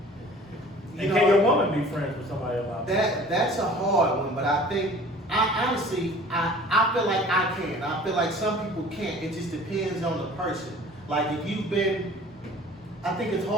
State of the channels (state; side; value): normal; both; correlation 0.47